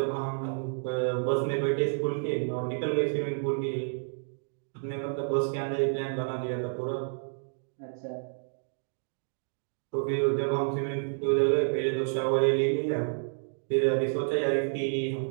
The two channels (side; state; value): left; silent; digital silence